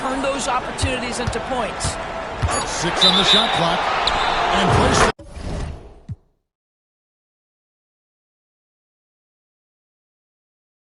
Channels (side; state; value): both; identical; correlation 1.00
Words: those opportunities into points. 6 on the shot clock. And placed